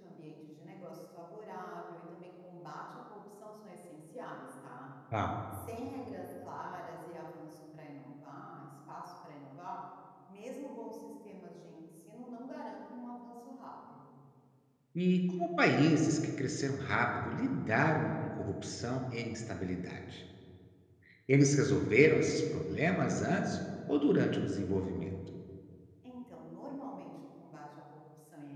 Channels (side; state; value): both; identical; correlation 1.00